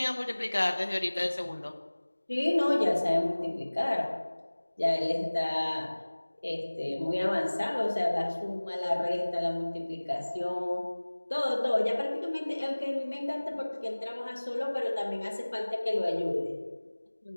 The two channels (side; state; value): both; inverted; correlation -1.00